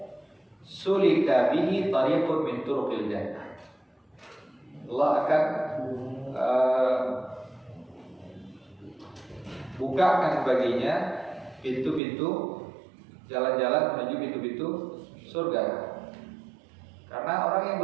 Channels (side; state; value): left; drops out; at 12.0 s